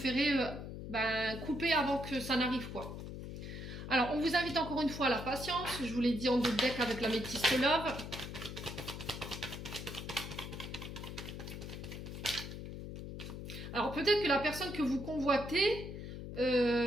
couper avant que ça n'arrive, quoi. Alors, on vous invite encore une fois à la patience. Je vous l'ai dit en 2 decks avec la métisse love. Alors, peut-être que la personne que vous convoitez,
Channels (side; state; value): left; noise; hum, 8 dB below the sound